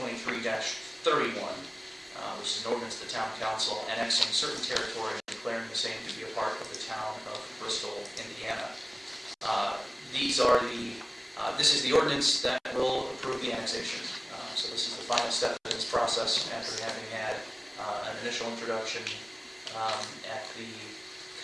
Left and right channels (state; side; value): identical; both; correlation 1.00